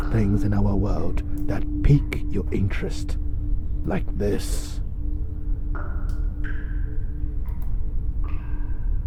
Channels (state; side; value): identical; both; correlation 1.00